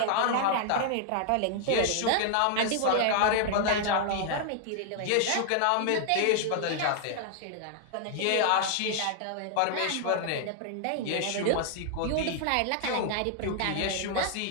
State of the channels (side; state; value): both; different; correlation 0.00